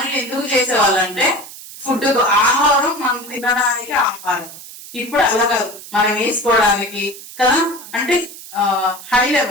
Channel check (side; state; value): right; noise; hiss, 15 dB below the sound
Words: ఎందుకు చేసేవాళ్ళంటే ఫుడ్, ఆహారం, మనం తినడానికి ఆహారం. ఇప్పుడు అలా కాదు, మనం వేసుకోవడానికి కదా. అంటే హై